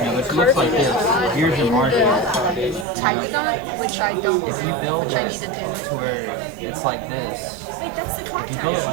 looks like this. Here's your margin. Typodont, which I don't, If you build which I need to do. to where it's like this. Wait, that's the If you contact. build it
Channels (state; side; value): drops out; left; at 2.9 s